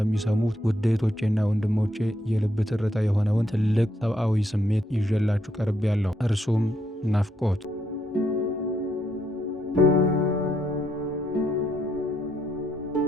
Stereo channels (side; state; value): both; normal; correlation 0.75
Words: ውድ እህቶቼና ወንድሞቼ የልብ ትርታ የሆነውን ትልቅ ሰብአዊ ስሜት ይዤላችሁ ቀርቤያለሁ። እርሱም ናፍቆት።